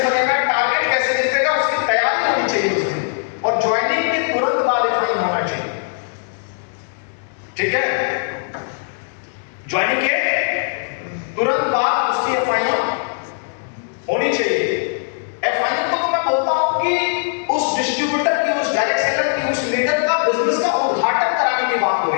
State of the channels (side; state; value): right; silent; digital silence